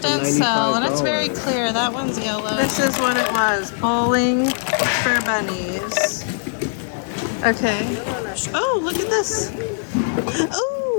didn't sell, and it's very clear. That one's yellow. This is what it was. Bowling for bunnies. Okay. Oh, look at this.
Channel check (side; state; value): right; silent; digital silence